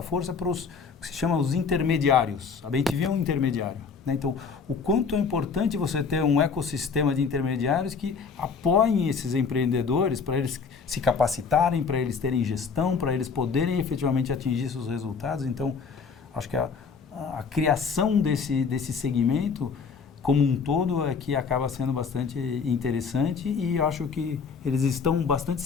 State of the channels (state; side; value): quieter; right; 5.6 dB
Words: força para os que se chama os intermediários. A BemTV é um intermediário, né? Então, o quanto é importante você ter um ecossistema de intermediários que apoiem esses empreendedores para eles se capacitarem, para eles terem gestão, para eles poderem efetivamente atingir seus resultados. Então, acho que a criação desse segmento como um todo é que acaba sendo bastante interessante e acho que eles estão bastante